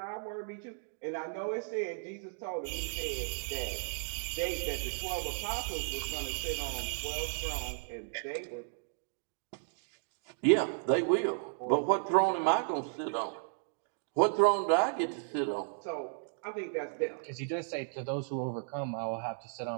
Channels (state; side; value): silent; left; digital silence